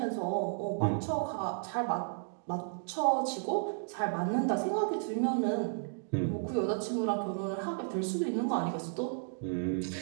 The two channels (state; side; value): silent; left; digital silence